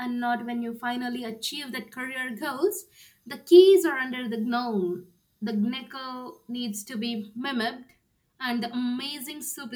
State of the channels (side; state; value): both; identical; correlation 1.00